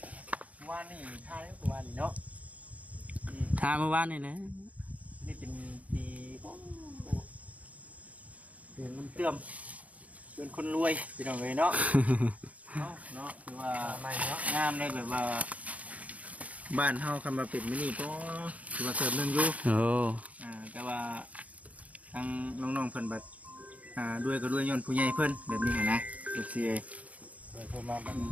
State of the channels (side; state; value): left; late; 0.069 ms